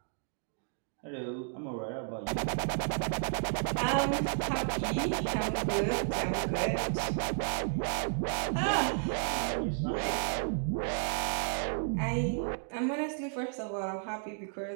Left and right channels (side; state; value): left; silent; 56 dB below the other